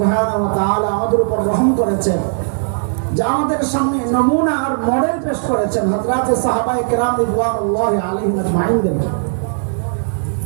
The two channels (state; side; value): silent; left; 68 dB below the other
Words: ওয়া তাআলা আমাদের উপর রহম করেছেন যে আমাদের সামনে নমুনা আর মডেল পেশ করেছেন হযরতে সাহাবায়ে কেরাম রিদওয়ানুল্লাহি আলাইহিম আজমাইন।